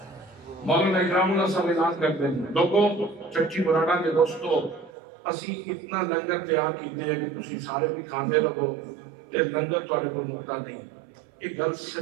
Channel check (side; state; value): left; drops out; at 4.9 s